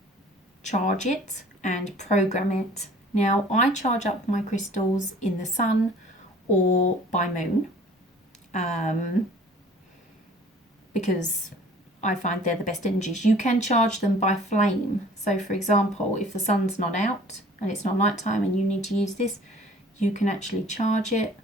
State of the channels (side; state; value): both; normal; correlation 0.50